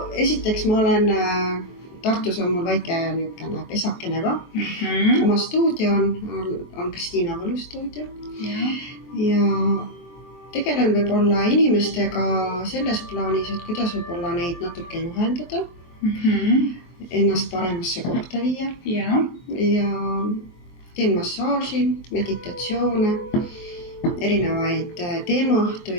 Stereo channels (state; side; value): late; right; 24 ms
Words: esiteks ma olen Tartus on mul väike niukene pesakene ka. Oma stuudio on Kristiina Võlu stuudio. Ja tegelen võib-olla inimestega selles plaanis, et kuidas võib-olla neid natuke juhendada, ennast paremasse kohta viia. Ja teen massaaži, meditatsioone, erinevaid